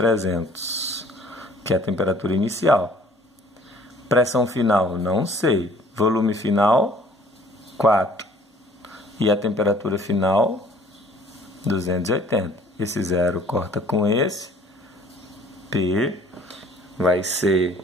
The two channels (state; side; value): normal; both; correlation 0.55